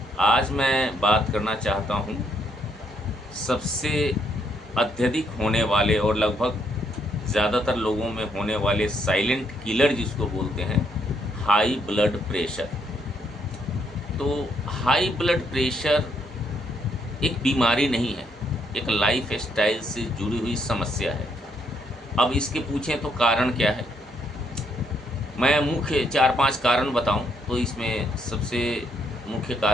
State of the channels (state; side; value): normal; both; correlation 0.73